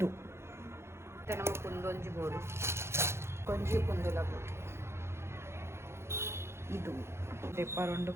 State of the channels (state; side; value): late; left; 0.13 ms